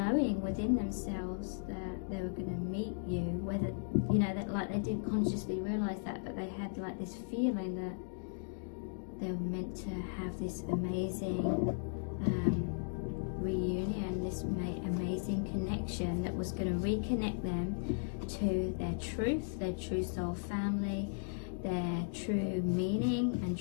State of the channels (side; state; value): right; silent; digital silence